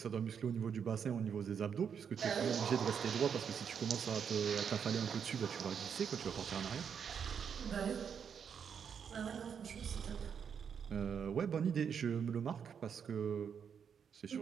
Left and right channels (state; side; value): quieter; left; 7.3 dB